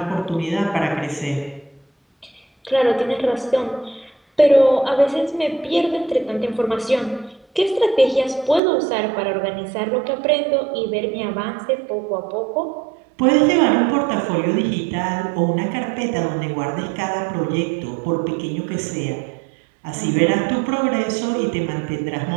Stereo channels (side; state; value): left; drops out; at 8.6 s